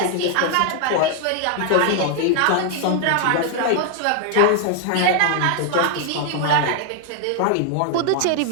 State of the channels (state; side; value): different; both; correlation 0.00